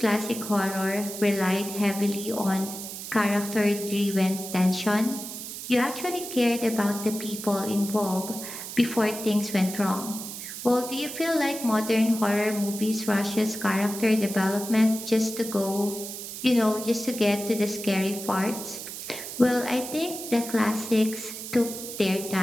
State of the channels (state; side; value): noise; right; hiss, 9 dB below the sound